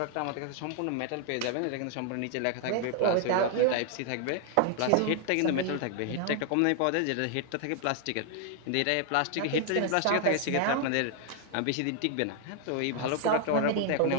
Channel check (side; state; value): both; different; correlation 0.00